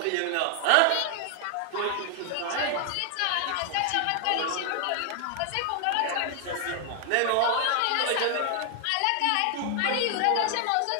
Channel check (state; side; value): different; both; correlation 0.00